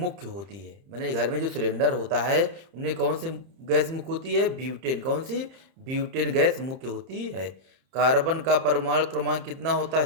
होती है? मैंने घर में जो सिलेंडर होता है उनमें कौन सी गैस मुख्य होती है? ब्यूटेन। कौन सी? ब्यूटेन गैस मुख्य होती है। कार्बन का परमाणु क्रमांक कितना होता है?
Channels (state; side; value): late; left; 30 ms